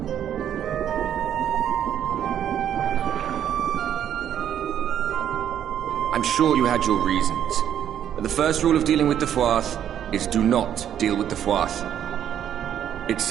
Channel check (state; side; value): quieter; left; 9.9 dB